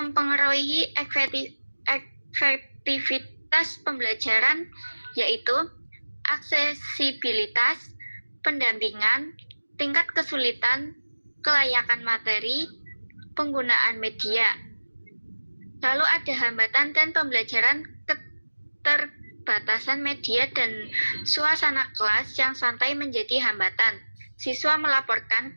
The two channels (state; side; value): inverted; both; correlation -1.00